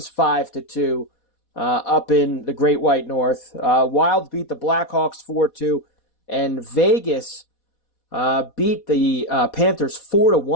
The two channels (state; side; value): late; right; 4.1 ms